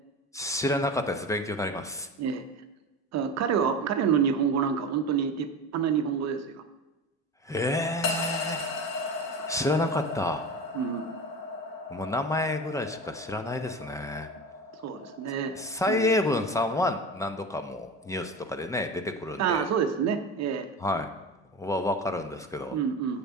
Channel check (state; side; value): normal; both; correlation 0.28